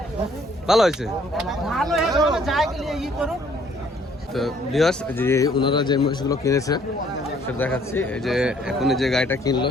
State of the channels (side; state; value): both; normal; correlation 0.62